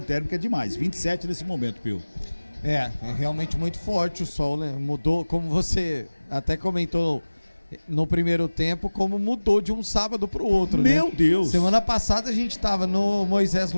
é demais, 27 nesse momento, Pio. É realmente muito forte o sol, né? Mudou, como você até comentou no primeiro tempo, como mudou de um sábado pro outro, Meu né? Deus! Semana passada a gente tava no Moisés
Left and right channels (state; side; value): inverted; both; correlation -1.00